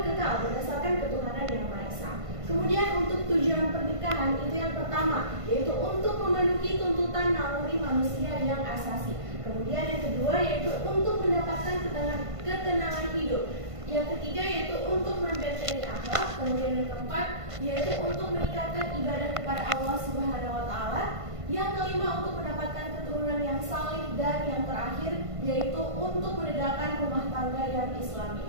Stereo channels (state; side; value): late; left; 1.5 ms